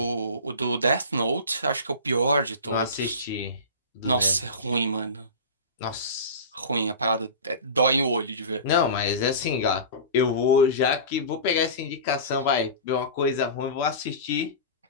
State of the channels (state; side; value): inverted; both; correlation -0.30